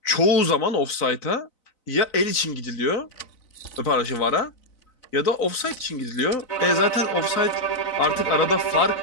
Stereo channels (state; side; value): late; right; 4.0 ms